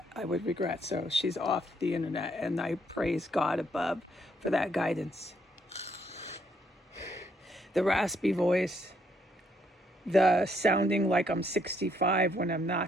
I would regret. So she's off the internet, and I praise God above for that guidance. The raspy voice, the sounding like I'm 65 when I'm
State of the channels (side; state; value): both; normal; correlation 0.71